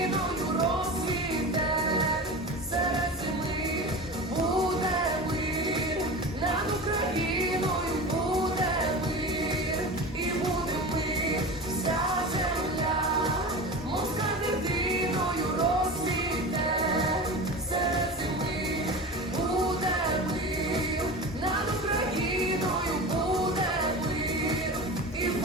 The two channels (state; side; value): normal; both; correlation 0.30